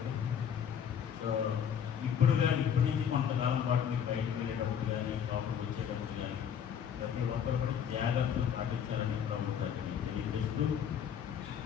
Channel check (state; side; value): quieter; right; 8.3 dB